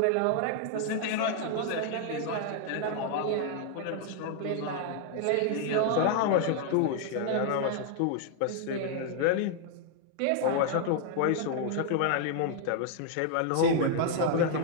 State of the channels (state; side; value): different; both; correlation 0.00